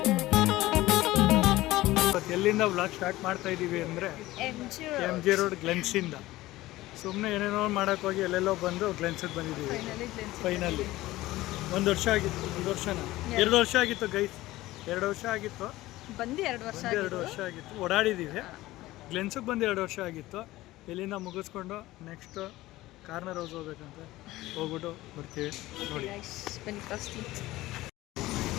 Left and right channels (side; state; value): right; quieter; 17.4 dB